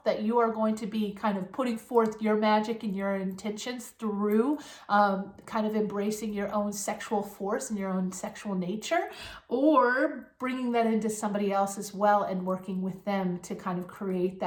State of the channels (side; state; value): both; identical; correlation 1.00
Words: that you are going to be kind of putting forth your magic and your intentions through kind of embracing your own sexual force and your own sexual nature, or bringing that into somebody else as well and working with them to kind of create